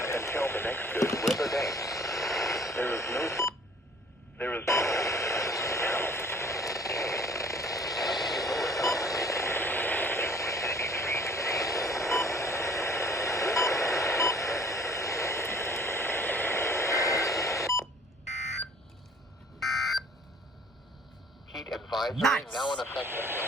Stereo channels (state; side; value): normal; both; correlation 0.53